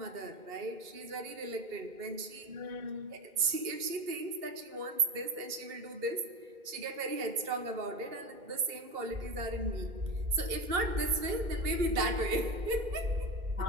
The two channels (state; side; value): late; left; 2.1 ms